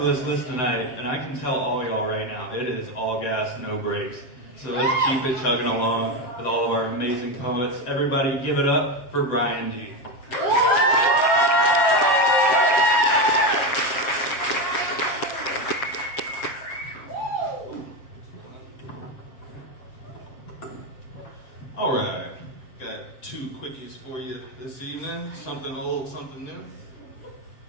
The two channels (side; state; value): right; late; 7.5 ms